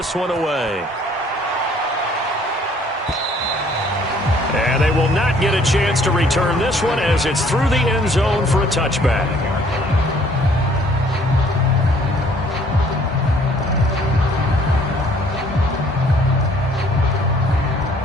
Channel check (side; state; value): both; normal; correlation 0.59